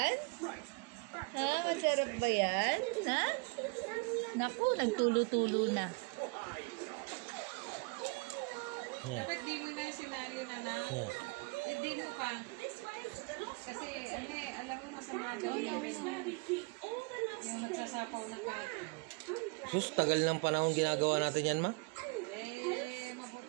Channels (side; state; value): left; quieter; 31.3 dB